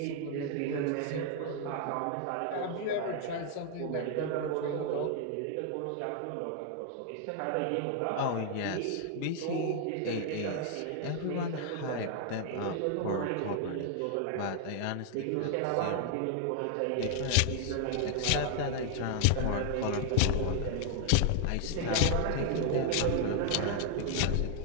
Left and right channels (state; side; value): different; both; correlation 0.00